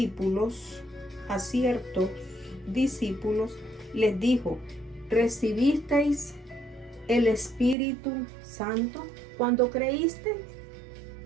les dijo, ¿recibisteis el Espíritu Santo cuando creísteis?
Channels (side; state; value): left; drops out; at 7.8 s